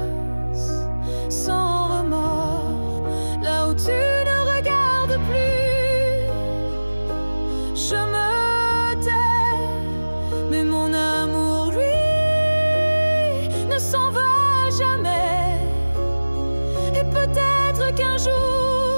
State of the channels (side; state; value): both; inverted; correlation -1.00